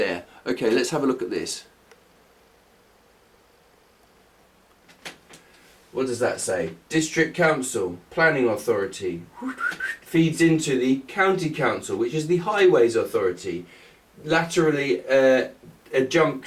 Okay, let's have a look at this. What does that say? District Council, Planning Authority, feeds into the County Council, which is the Highways Authority, laterally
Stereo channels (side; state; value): both; identical; correlation 1.00